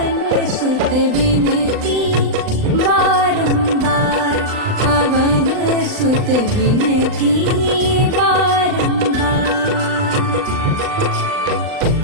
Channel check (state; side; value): late; left; 39 ms